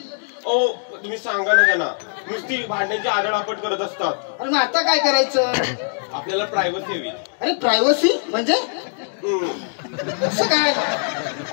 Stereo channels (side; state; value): right; silent; 64 dB below the other